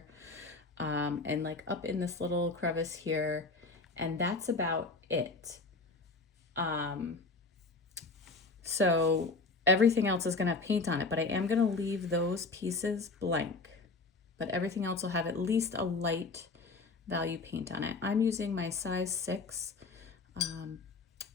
and like up in this little crevice here, and that's about it. So everything else is gonna have paint on it, but I am gonna leave those pieces blank, but everything else will have at least a light value paint on it. I'm using my size 6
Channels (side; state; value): right; quieter; 3.8 dB